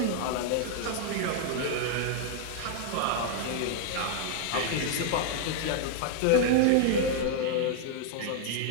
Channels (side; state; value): both; different; correlation 0.00